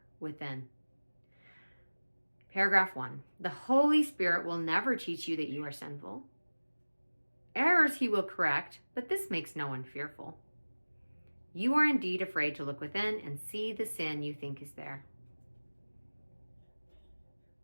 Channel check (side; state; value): both; inverted; correlation -1.00